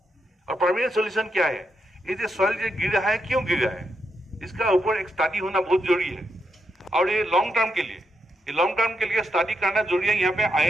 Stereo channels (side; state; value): both; normal; correlation 0.83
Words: और परमानेंट सोल्यूशन क्या है? ये जो सॉइल जो गिर रहा है, क्यों गिर रहा है, इसका ऊपर एक स्टडी होना बहुत जरूरी है। और ये लॉन्ग टर्म के लिए स्टडी करना जरूरी है। यहाँ पे